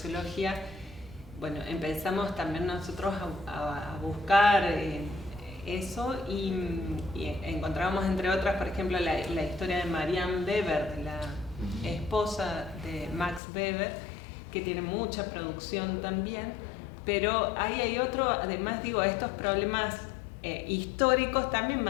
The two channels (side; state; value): right; drops out; at 13.4 s